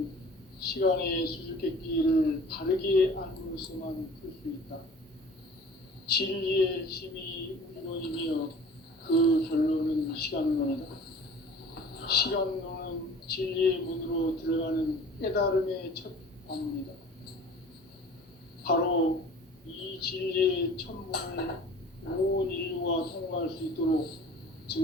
시간의 수수께끼를 바르게 알므로서만 풀 수 있다. 진리의 힘이 우주론이며 그 결론은 시간론이다. 시간론은 진리의 문으로 들어가는 깨달음의 첫 관문이다. 바로 이 진리의 천문을 온 인류가 통과할 수 있도록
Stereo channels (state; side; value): normal; both; correlation 0.45